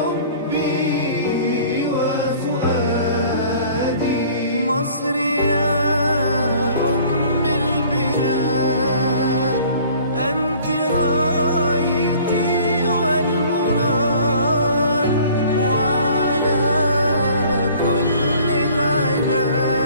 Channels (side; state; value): both; inverted; correlation -0.51